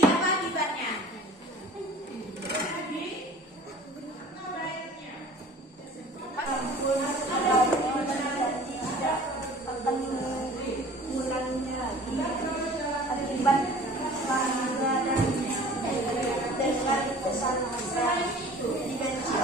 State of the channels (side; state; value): both; normal; correlation 0.46